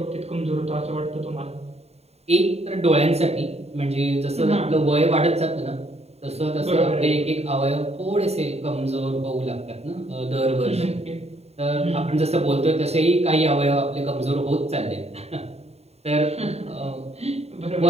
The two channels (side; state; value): left; late; 0.30 ms